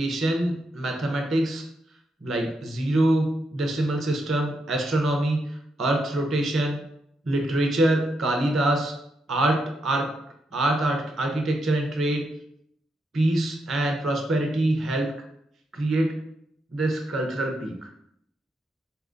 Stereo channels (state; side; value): normal; both; correlation 0.82